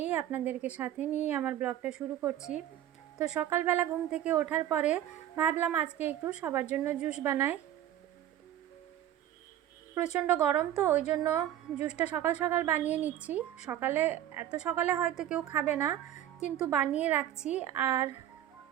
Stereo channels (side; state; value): left; quieter; 11.8 dB